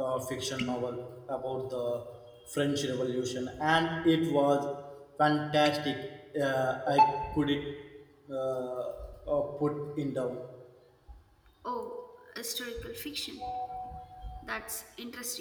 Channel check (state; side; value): identical; both; correlation 1.00